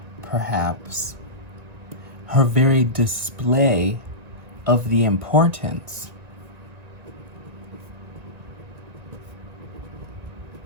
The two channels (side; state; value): left; late; 1.9 ms